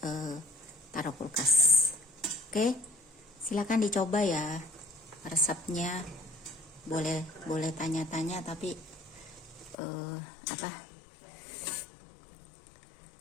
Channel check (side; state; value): right; drops out; at 9.8 s